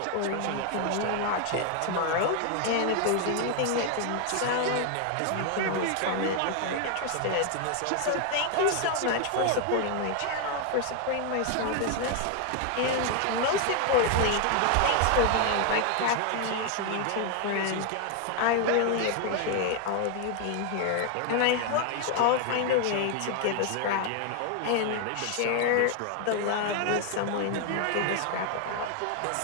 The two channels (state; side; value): different; both; correlation 0.00